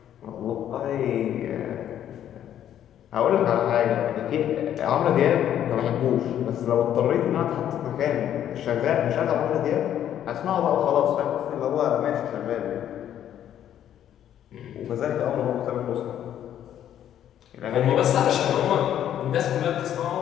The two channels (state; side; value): quieter; right; 10.6 dB